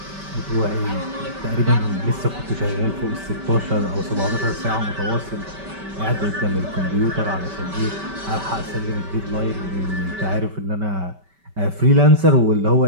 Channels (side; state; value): left; late; 5.2 ms